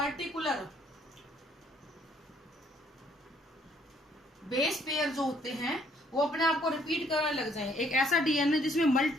बेस पेयर जो होते हैं वो अपने आप को रिपीट करने लग जाए। एक ऐसा DNA जिसमें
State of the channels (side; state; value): both; normal; correlation 0.65